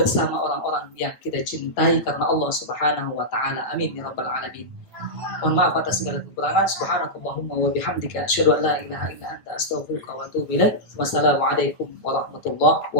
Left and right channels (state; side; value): late; right; 9.0 ms